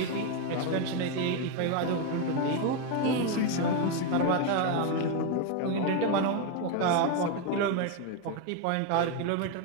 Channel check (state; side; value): different; both; correlation 0.02